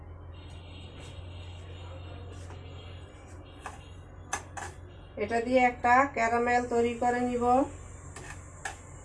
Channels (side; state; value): both; identical; correlation 1.00